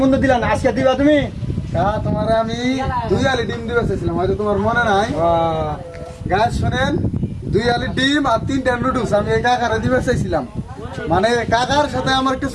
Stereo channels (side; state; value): both; identical; correlation 1.00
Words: বন্ধু দিলা না, আজকে দিবা তুমি? হ্যাঁ, তোমার আমি 2 আলি ডিম দিবে চাইছিলাম, হয়তো তোমার মনে নাই। গাছ শোনেন, 2 আলি ডিম আর 3টা নুডলস আমি এই কাকারে দিবে চাইছিলাম। মানে কাকার সাথে আমার একটা